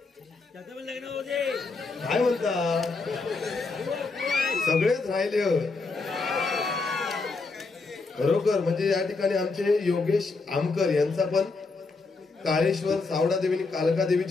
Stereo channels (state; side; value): quieter; right; 3.9 dB